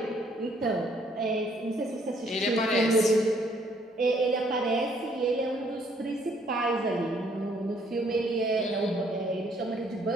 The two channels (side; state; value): both; normal; correlation 0.65